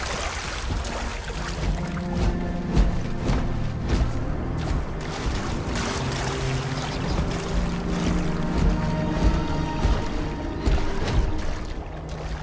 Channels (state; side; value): identical; both; correlation 1.00